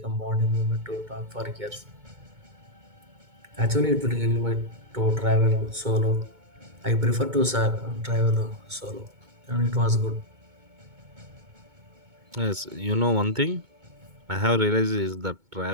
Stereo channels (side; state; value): left; late; 2.2 ms